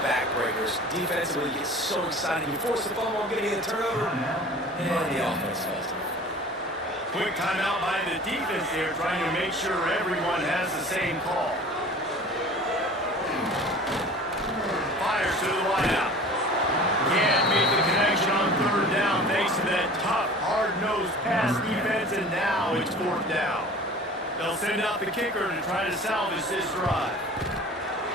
Defensively, you get so excited. You force the fumble, getting a turnover, and the offense falls. Quick timeout by the defense there, trying to make sure everyone has the same call. Fires to the wideout. Can't make the connection on 3rd down thanks to that tough, hard-nosed pass defense, and now it's 4th down. They'll send out the kicker to try to salvage this drive.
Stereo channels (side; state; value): both; normal; correlation 0.42